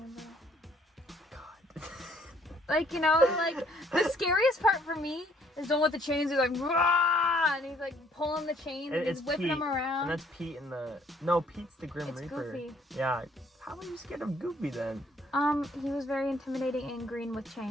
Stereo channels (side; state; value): both; normal; correlation 0.63